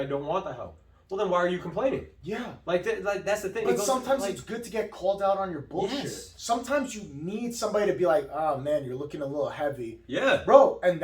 don't want the help? Well, then why are you complaining? Yeah. Like that's the thing. But sometimes it's good to get called out on your bullshit. Yes. Sometimes you need somebody to be like, oh, man, you're looking a little heavy. Yeah. Bro, and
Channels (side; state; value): both; identical; correlation 1.00